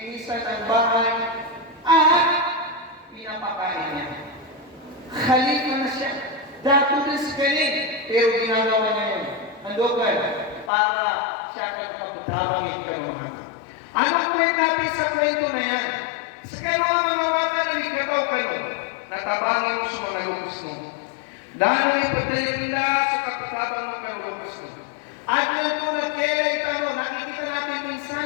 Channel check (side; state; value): right; drops out; at 10.7 s